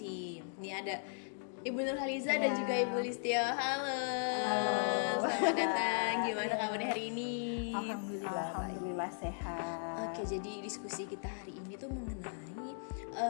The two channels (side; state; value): right; silent; digital silence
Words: Ini ada Ibu Nurhaliza dan juga Ibu Listio. Halo. Selamat datang. Gimana kabarnya hari ini? Alhamdulillah sehat. Oke, jadi diskusi kita hari ini tuh mengenai